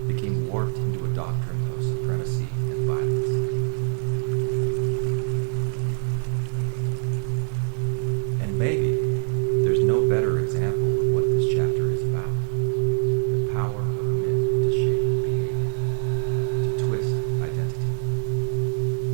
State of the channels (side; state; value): left; silent; 62 dB below the other